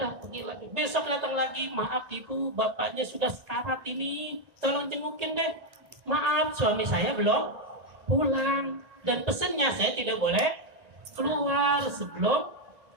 pergi lagi. Besok datang lagi, maaf ibu, bapaknya sudah sekarat ini, tolong jengukin deh. Maaf, suami saya belum pulang. Dan pesannya saya tidak boleh keluar sebelum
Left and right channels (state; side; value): late; left; 1.8 ms